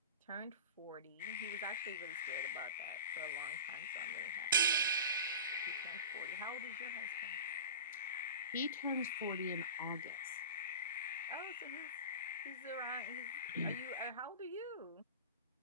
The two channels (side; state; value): both; inverted; correlation -0.33